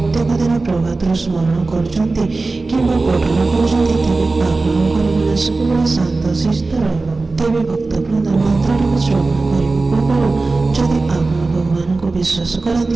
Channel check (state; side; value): quieter; left; 3.5 dB